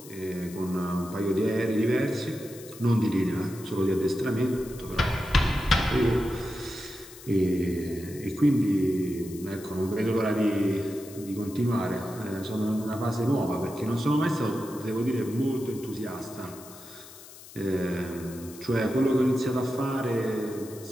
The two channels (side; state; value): left; noise; hiss, 18 dB below the sound